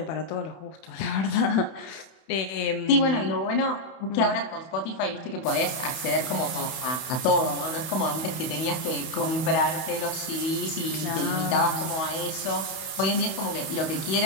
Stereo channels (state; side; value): late; right; 31 ms